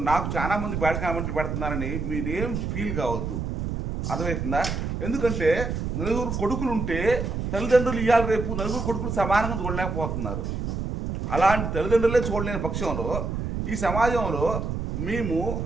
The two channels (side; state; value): right; noise; rumble, 3 dB below the sound